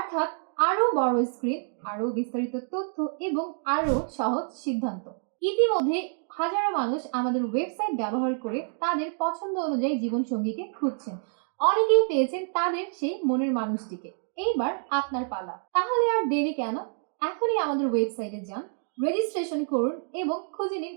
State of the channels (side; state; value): left; silent; 59 dB below the other